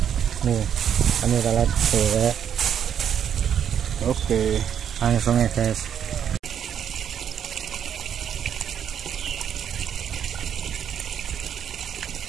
Nih, umpannya pelet. Oke. Langsung ya guys.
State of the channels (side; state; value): left; quieter; 8.8 dB